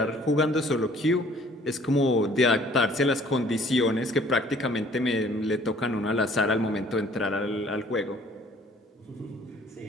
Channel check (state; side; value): normal; both; correlation 0.56